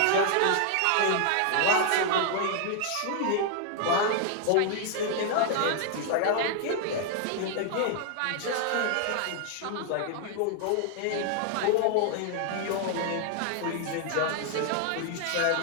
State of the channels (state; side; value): different; both; correlation 0.00